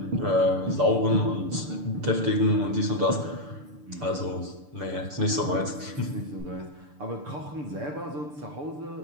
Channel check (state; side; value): late; left; 6.8 ms